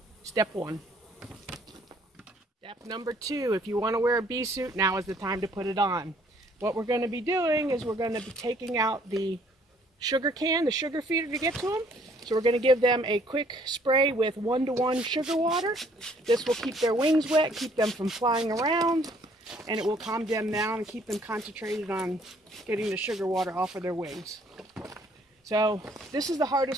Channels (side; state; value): both; normal; correlation 0.61